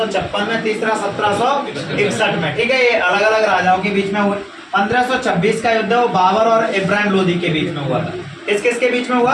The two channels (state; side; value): identical; both; correlation 1.00